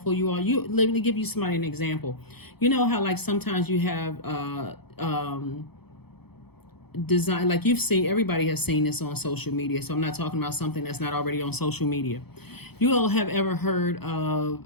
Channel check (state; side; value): late; right; 0.97 ms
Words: you are, let me give you an example. You know how like sometimes you have design, like everybody has seen this on social media. So I'm not talking about something that's not already on social media. You all have ever heard of